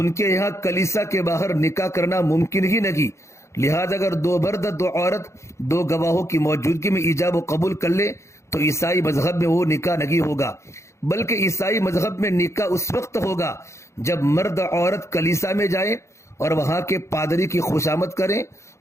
کے یہاں کلیسا کے باہر نکاح کرنا ممکن ہی نہیں. لہذا اگر دو مرد دو عورت دو گواہوں کی موجودگی میں ایجاب و قبول کر لے تو عیسائی مذہب میں وہ نکاح نہیں ہوگا، بلکہ عیسائی مذہب میں نکاح اس وقت ہوگا جب مرد عورت کلیسا میں جائیں اور وہاں کے پادری کی خوشامد کریں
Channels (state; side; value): late; right; 0.14 ms